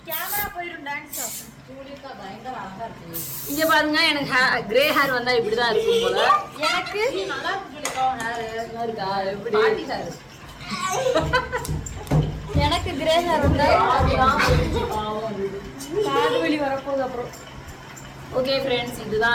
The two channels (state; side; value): identical; both; correlation 1.00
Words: கேமரா போயிடும். டான்ஸ் சூரியக்கா பயங்கர அழகா இருக்கு. இங்க பாருங்க எனக்கு கிரே ஹேர் வந்தா இப்படிதான் இருக்கும் போல. எனக்கு நல்லா இருக்கு. ஹேர் இருக்கா எப்படி பாட்டி ஹேர். எனக்கு கிரே ஹேர் வந்தா காது வலி வரப்போகுது. அப்புறம் ஓகே ஃப்ரெண்ட்ஸ்,